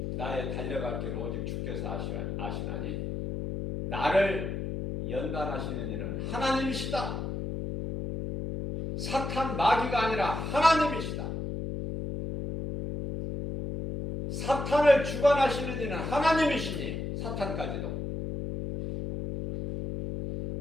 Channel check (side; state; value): left; noise; hum, 4 dB below the sound